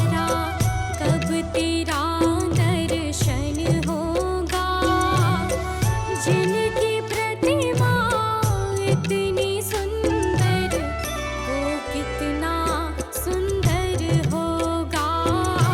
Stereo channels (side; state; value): both; identical; correlation 1.00